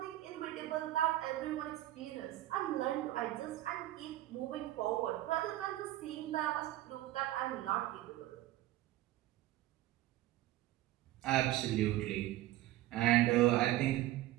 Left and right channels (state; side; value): quieter; left; 15.3 dB